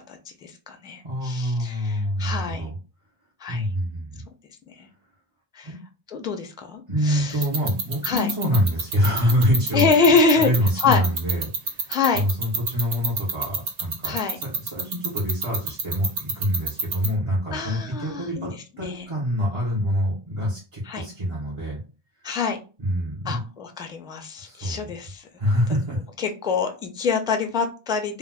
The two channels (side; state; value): left; late; 1.8 ms